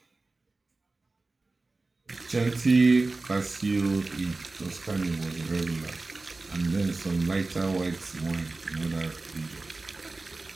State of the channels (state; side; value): quieter; left; 3.4 dB